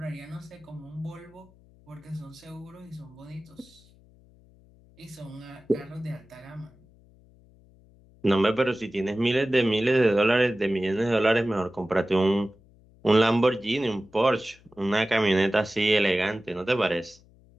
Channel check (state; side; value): noise; left; hum, 28 dB below the sound